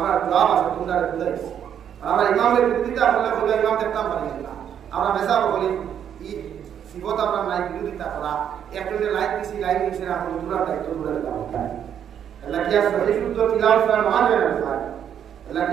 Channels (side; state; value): left; quieter; 9.0 dB